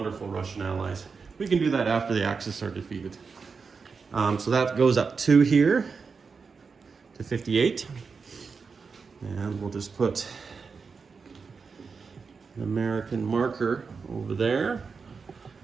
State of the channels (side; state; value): left; quieter; 5.1 dB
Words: Russian allies. We can do that after the Axis are defeated. So that goes up 2 here to 58. And we'll just put an American marker over there